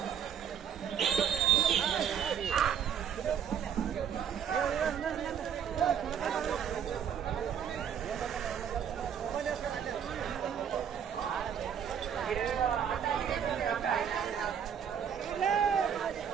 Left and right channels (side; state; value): left; quieter; 8.3 dB